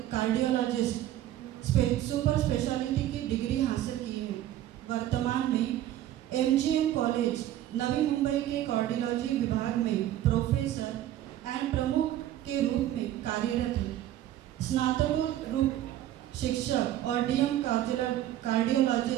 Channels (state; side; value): quieter; left; 12.9 dB